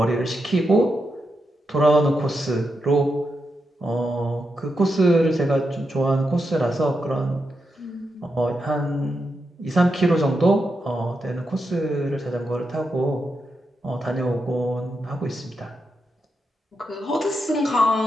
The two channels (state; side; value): normal; both; correlation 0.85